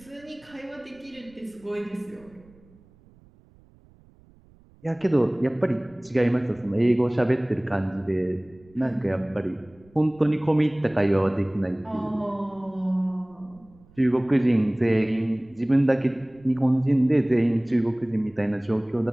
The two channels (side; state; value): right; noise; rumble, 28 dB below the sound